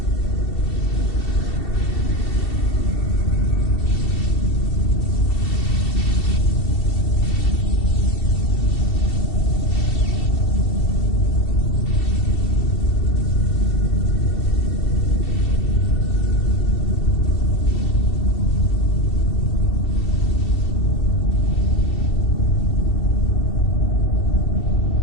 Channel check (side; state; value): right; late; 2.7 ms